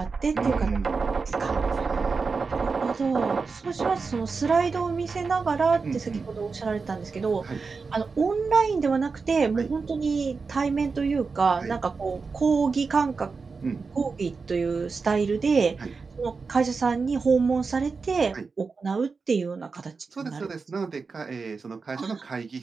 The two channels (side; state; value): left; quieter; 4.7 dB